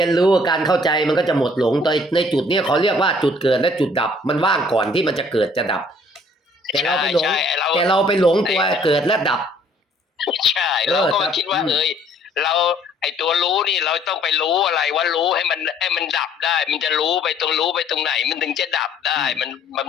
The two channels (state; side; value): normal; both; correlation 0.59